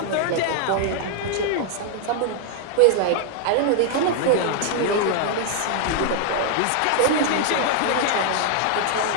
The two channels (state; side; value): different; both; correlation 0.00